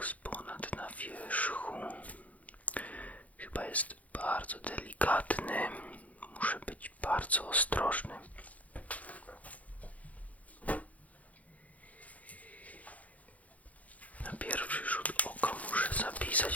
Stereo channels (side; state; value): right; late; 0.071 ms